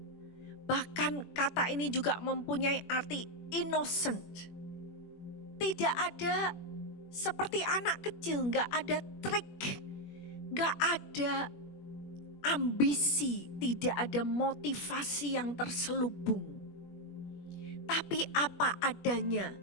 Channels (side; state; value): right; late; 21 ms